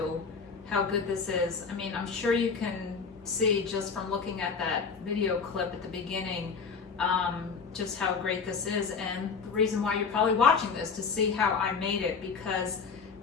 how good this is. I mean, I'm sure you can see just from looking at that video clip at the beginning, just how great this is. And the reason why you're probably watching this to see how I made it, because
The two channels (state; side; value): quieter; right; 5.4 dB